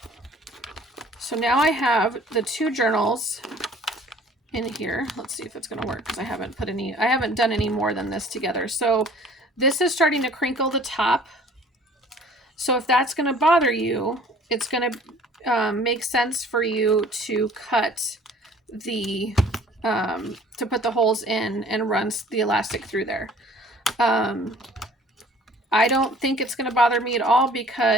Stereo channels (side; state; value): both; normal; correlation 0.52